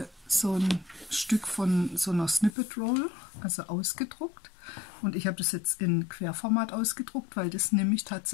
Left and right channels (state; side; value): drops out; right; at 2.5 s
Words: so ein Stück von so einer Snippet Roll, also ausgedruckt. Und ich habe das jetzt in Querformat ausgedruckt, weil das nehme ich